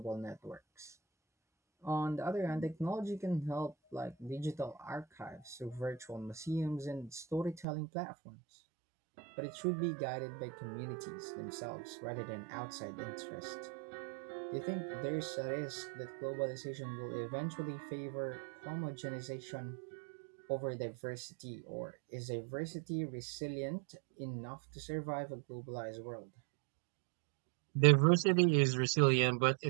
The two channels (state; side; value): drops out; left; at 7.7 s